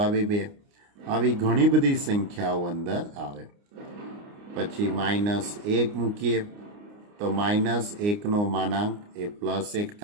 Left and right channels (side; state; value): left; late; 29 ms